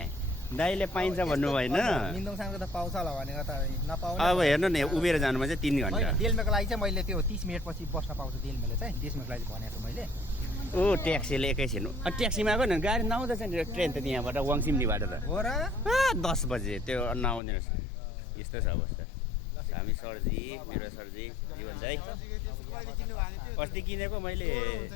दाइले पाइन्छ भन्नु भएन. अब हेर्नु नि उभिएर जानुमा चाहिँ 3 घन्टा. डेल्मेको लागि चाहिँ मैले त्यो 30 मिनट पछि बस्न पाउँछु. डेल्मेले चाहिँ डेल्मेको लागि भनेको छु मैले. ओ ट्याक्सीले एकैछिन. ट्याक्सीमा आएको न गाडी नआउँदैछ नि. ट्रेन त त्यहाँबाट वाङसिमलीबाट त हो र 10 बजे त्यो नआउँदैन रहेछ. यस्तो छ अवस्था. हामी सरजी, मेरो सरजी जीवन दाइ अस्ति किनेको मैले.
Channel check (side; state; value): right; drops out; at 17.4 s